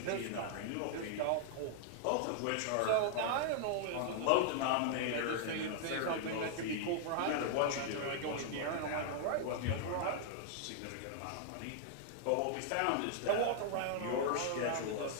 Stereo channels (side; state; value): both; different; correlation -0.01